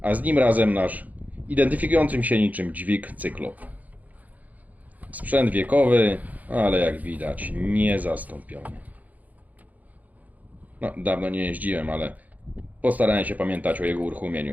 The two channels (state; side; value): late; left; 0.078 ms